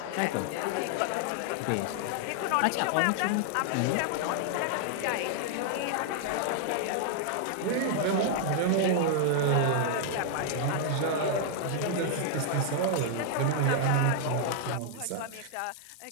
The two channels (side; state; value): both; different; correlation 0.00